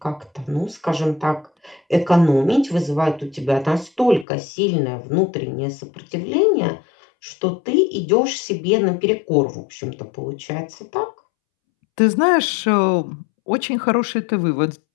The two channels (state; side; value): drops out; right; at 4.2 s